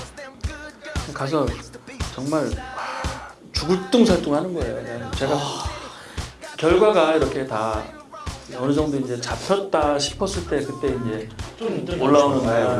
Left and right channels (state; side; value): identical; both; correlation 1.00